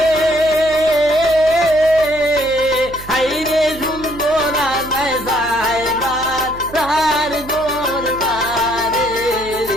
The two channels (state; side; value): noise; right; hum, 15 dB below the sound